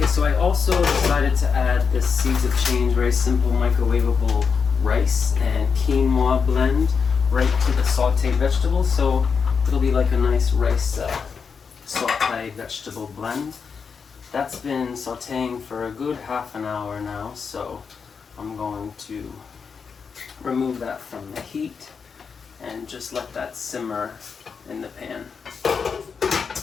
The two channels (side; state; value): right; quieter; 5.8 dB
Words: so I also decided to add this Seeds of Change, very simple microwavable rice and quinoa blend right to the sauteed vegetables. So it'll be like a nice rice sauteed vegetable blend. That's been sauteing for a good half an hour now, so I'm going to remove that from the heat and just let that simmer in the pan.